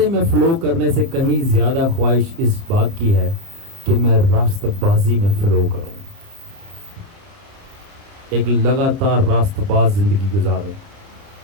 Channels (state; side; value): late; left; 29 ms